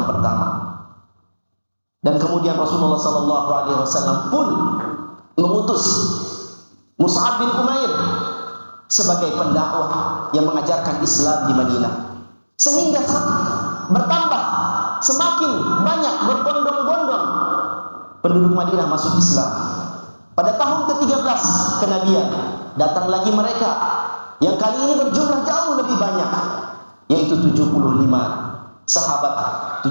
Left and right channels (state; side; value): inverted; both; correlation -1.00